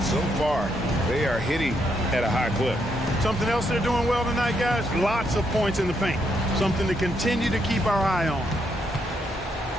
so far they are hitting at a high clip. Something else they're doing well tonight, guys, lots of points in the paint. Something to continue to keep our eye on.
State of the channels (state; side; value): normal; both; correlation 0.77